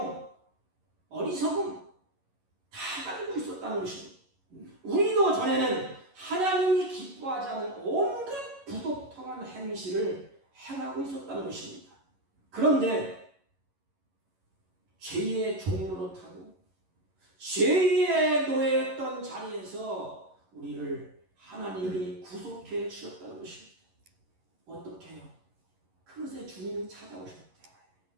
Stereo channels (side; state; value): left; late; 11 ms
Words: 어리석음 다 가지고 있었다는 것입니다. 우리도 전에는 하나님이 기뻐하지 않은 온갖 부독통한 행실을 행하고 있었다는 것입니다. 그런데 죄의 종노릇하고 죄의 노예였던 자리에서 우리를 하나님이 구속해 주셨다는 것입니다. 어떻게 해요? 그것의 주님이 찾아오셨대.